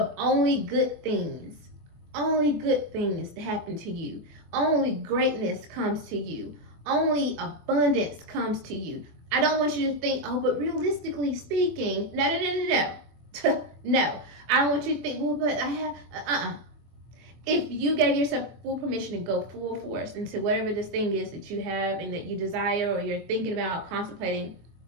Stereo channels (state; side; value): late; left; 24 ms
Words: only good things that happen to you. Only greatness comes to you. Only abundance comes to you. I don't want you to think, oh, but realistically speaking, no. No, I don't want you to think, well, but I have, If you gave yourself full permission to go full force into whatever this thing is that you have and that you desire or you're thinking about, contemplating,